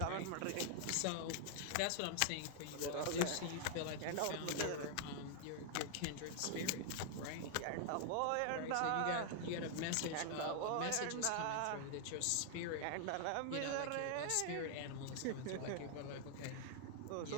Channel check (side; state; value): both; different; correlation 0.00